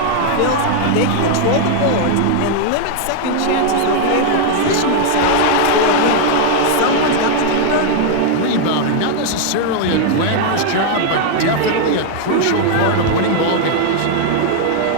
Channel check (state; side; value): different; both; correlation 0.00